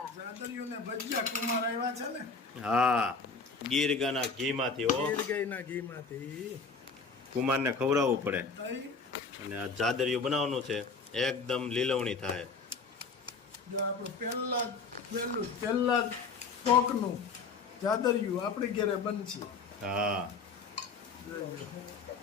જાદરિયું ને ભજીયા કુમાર આવ્યા છે ને. હા, ગીર ગાના ઘીમાંથી. હો, ગીર ગાયના ઘીમાંથી કુમારને ખવડાવવું પડે. તઈ અને આ જાદરિયું બનાવવાનું છે, એકદમ લીલવણી થાય. જો આપણું પહેલા કોકનું જાદરિયું આપણી ઘરે બનશે. હા,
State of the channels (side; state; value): right; quieter; 4.6 dB